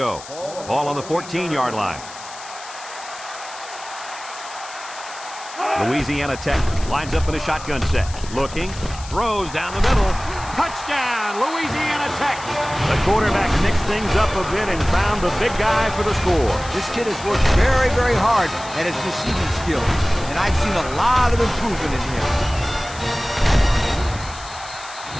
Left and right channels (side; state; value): left; noise; hiss, 15 dB below the sound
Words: Ball on the 14-yard line. Louisiana Tech lines up in a shotgun set. Looking, throws down the middle. Touchdown, Louisiana Tech! The quarterback mixed things up a bit and found the big guy for the score. This kid has worked very, very hard at his receiving skills. And I've seen a lot of improvement in him.